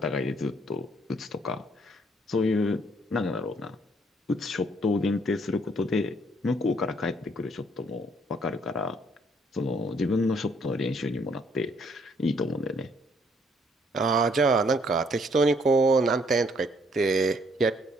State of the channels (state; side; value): normal; both; correlation 0.66